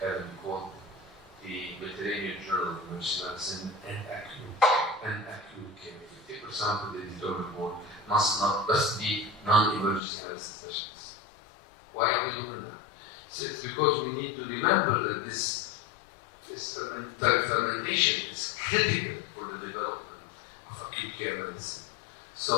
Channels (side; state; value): right; drops out; at 10.0 s